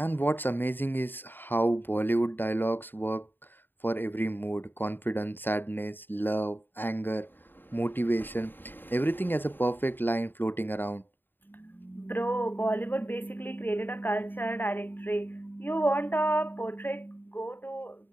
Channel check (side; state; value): right; late; 0.094 ms